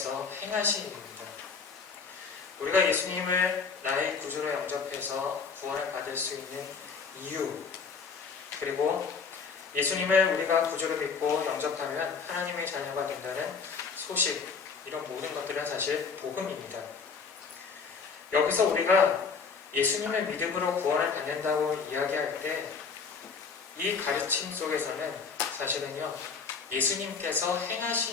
행하신 일입니다. 우리가 예수님을 나의 구주로 영접해서 구원을 받을 수 있는 이유, 그리고 예수님을 우리가 구주로 믿고 영접하면 하나님의 자녀가 된다는 소식, 이런 모든 것들은 사실 복음입니다. 여기서 우리가 예수님의 믿음으로 구원을 받는다고 이야기할 때 이 가르침 속에서는 사실은요, 예수님께서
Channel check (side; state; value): right; quieter; 5.4 dB